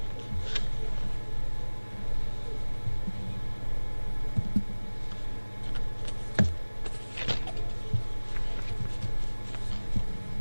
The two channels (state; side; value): inverted; both; correlation -1.00